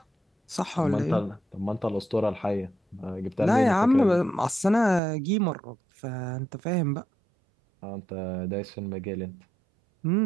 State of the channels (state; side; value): drops out; left; at 5.0 s